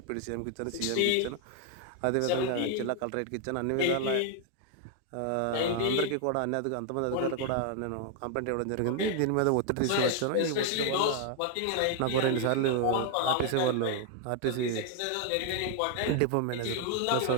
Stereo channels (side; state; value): both; different; correlation 0.00